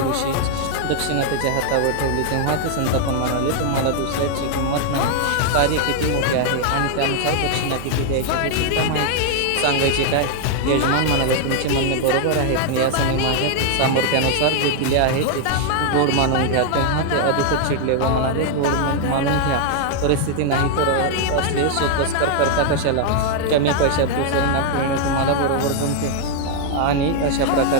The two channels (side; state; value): both; different; correlation 0.00